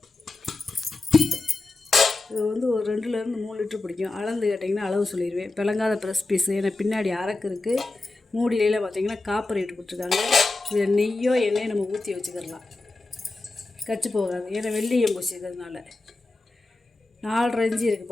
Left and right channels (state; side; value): quieter; right; 3.2 dB